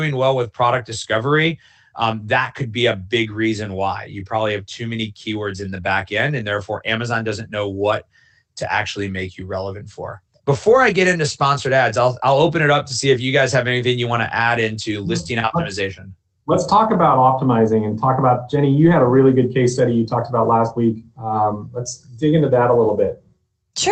well with product discovery, that could be a big reason why. You probably have too many keywords in the back end, and therefore Amazon doesn't know what to actually make you relevant for. Before I get into sponsored ads, I'll open it up to see if you guys have anything you want to add into listing optimization. Let's talk about optimizing and talk about, Jenny, you had a really good case study you talked about last week. Let's dig into that a little bit.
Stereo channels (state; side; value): identical; both; correlation 1.00